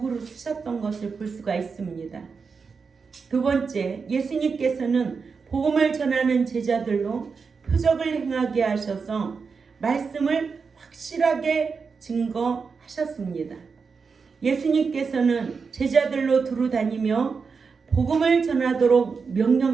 쓰셨던 것을 볼 수가 있습니다. 두 번째, 예수님께서는 복음을 전하는 제자들로 표적을 행하게 하셔서 말씀을 확실하게 증거하셨습니다. 예수님께서는 제자들로 두루 다니며 복음을 전하도록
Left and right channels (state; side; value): quieter; left; 5.2 dB